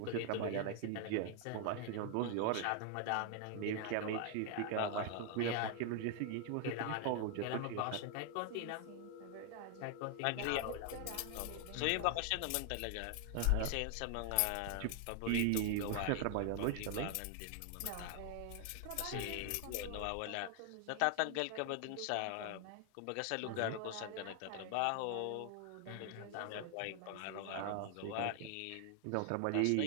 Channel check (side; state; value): both; different; correlation 0.00